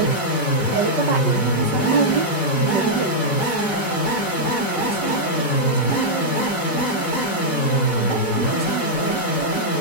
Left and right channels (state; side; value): late; right; 5.3 ms